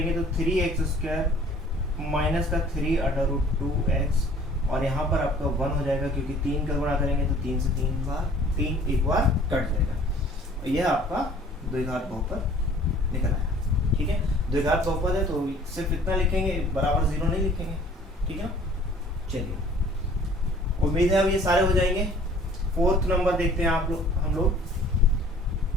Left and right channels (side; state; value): both; normal; correlation 0.52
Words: तो 3x स्क्वायर माइनस का 3/√2x, और यहाँ पर आपका 1 हो जाएगा, क्योंकि 3 का गुणा करेंगे तो 3 से 3 एक बार कट जाएगा, और यह आपका द्विघात बहुपद निकल आया। ठीक है, द्विघात बहुपद है तो सिर्फ इतना लिखेंगे, बराबर 0 नहीं लिखेंगे। ठीक है, चलिए उम्मीद है अब ये सारे हो जाएंगे। फोर्थ नंबर देखते हैं हम लोग।